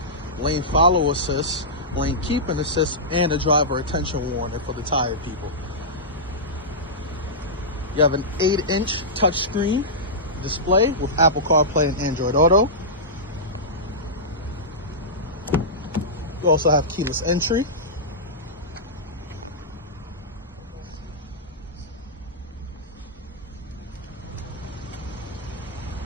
lane follow assist, lane keeping assist, and a driver attention warning for the tired people. You have an 8-inch touchscreen display with Apple CarPlay and Android Auto. You also have keyless entry.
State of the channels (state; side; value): normal; both; correlation -0.13